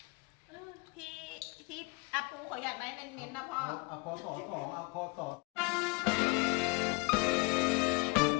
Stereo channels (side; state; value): right; quieter; 28.7 dB